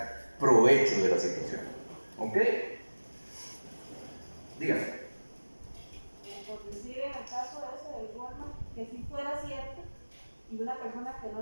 provecho de la situación. ¿Ok? Dígame. Por decir, en el caso ese del Walmart, que si fuera cierto, y una persona que no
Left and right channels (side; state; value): both; inverted; correlation -1.00